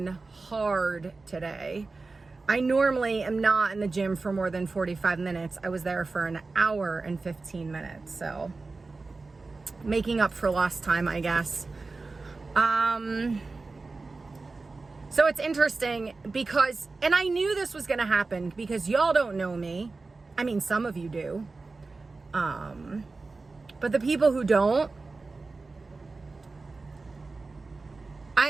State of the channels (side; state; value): left; quieter; 3.8 dB